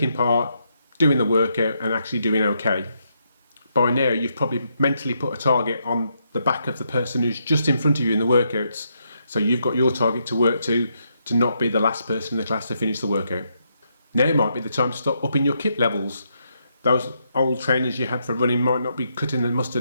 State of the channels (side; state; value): both; inverted; correlation -0.79